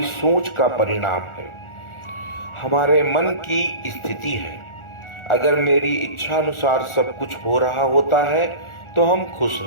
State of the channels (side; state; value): right; late; 1.4 ms